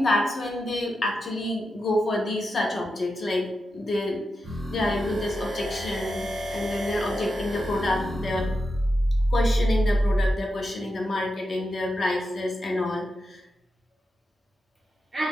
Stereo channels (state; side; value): normal; both; correlation 0.88